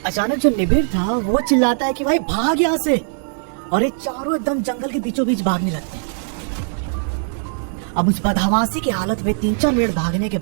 अचानक जो निबिर था वो चिल्लाता है कि भाई भाग यहाँ से, और ये चारों एकदम जंगल के बीचों बीच भागने लगते हैं। अब उस बदहवासी की हालत में 3-4 मिनट भागने के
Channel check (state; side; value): silent; left; 66 dB below the other